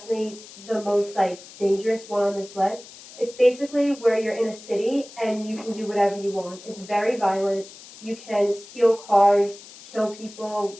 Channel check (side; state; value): left; noise; hiss, 18 dB below the sound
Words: the most like dangerous one on this list. It's basically where you're in a city and you can do whatever you want. It's very violent. You can steal cars, kill people,